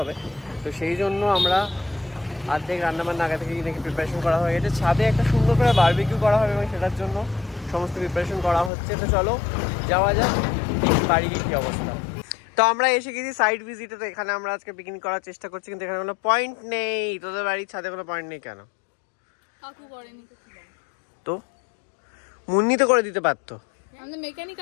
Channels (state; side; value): drops out; right; at 8.7 s